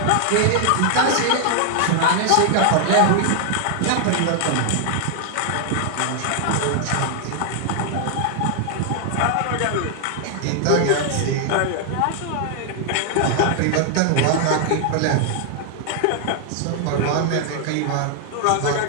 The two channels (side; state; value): both; different; correlation 0.00